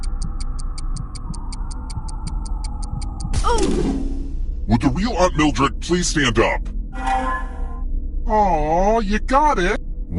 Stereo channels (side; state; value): both; identical; correlation 1.00